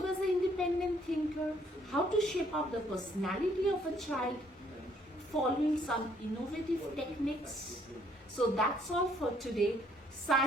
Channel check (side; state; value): both; normal; correlation 0.65